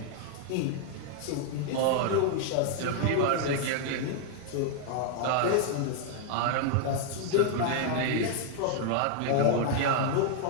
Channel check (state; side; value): different; both; correlation 0.00